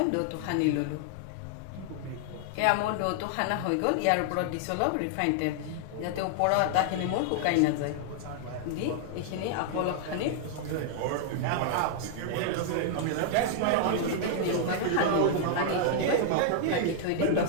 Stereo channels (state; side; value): different; both; correlation -0.01